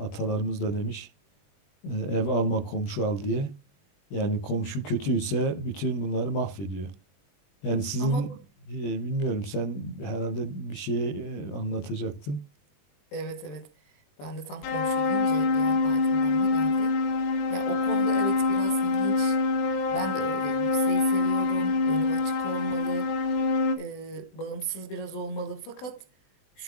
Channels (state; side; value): late; right; 20 ms